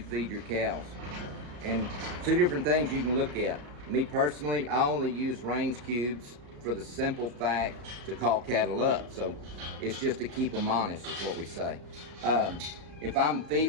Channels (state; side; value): late; left; 34 ms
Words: your cows? And two different things you can look at. Me personally, I only use range cubes for the simple fact to call cattle up. So it's just to keep them honest is what we say. If I'm